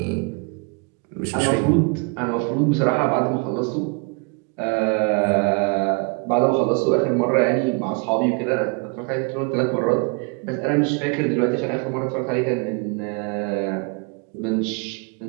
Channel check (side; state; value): left; quieter; 33.7 dB